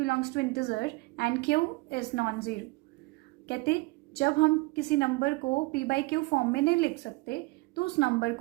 to integer and q is non-zero। कहते जब हम किसी नंबर को p by q फॉर्म में नहीं लिख सकते तो उस नंबर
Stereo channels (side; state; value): left; quieter; 23.6 dB